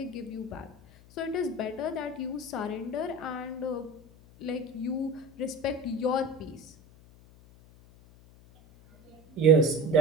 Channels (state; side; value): noise; left; hum, 24 dB below the sound